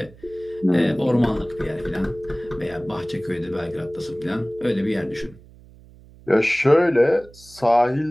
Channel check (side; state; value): right; noise; hum, 23 dB below the sound